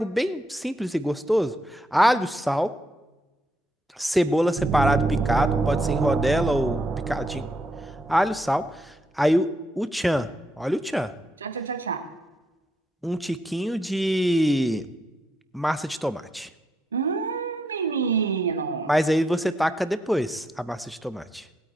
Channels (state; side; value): normal; both; correlation 0.78